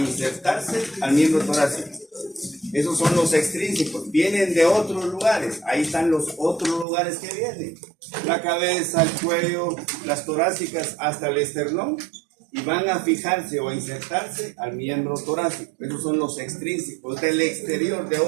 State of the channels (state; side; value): drops out; left; at 6.9 s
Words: al miembro torácico. Esos son los extrínsecos, vienen de otros lugares. Ahí están los otros lugares que vienen. La cabeza, el cuello, las torácicas hasta el esternón. Y van a fijarse o a insertarse al miembro torácico. Esos son los extrínsecos del exterior, de